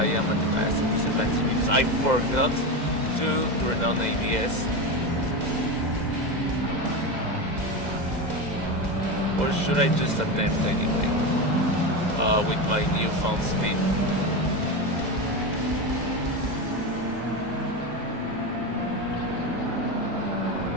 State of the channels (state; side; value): late; left; 2.0 ms